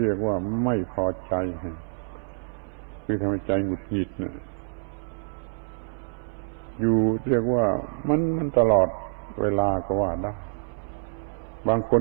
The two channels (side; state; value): left; silent; 58 dB below the other